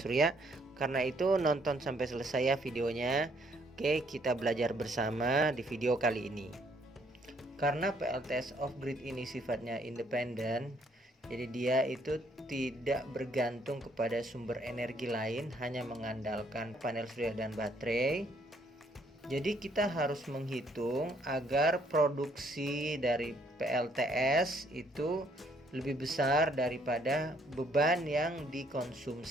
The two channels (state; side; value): normal; both; correlation 0.67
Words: Karena itu nonton sampai selesai ya videonya. Oke, kita belajar bersama di video kali ini. Karena PLTS off-grid ini sifatnya independen, jadi dia itu tidak bergantung kepada sumber energi lain, hanya mengandalkan panel surya dan baterai. Jadi kita harus menghitung agar produksi dari PLTS itu lebih besar daripada beban yang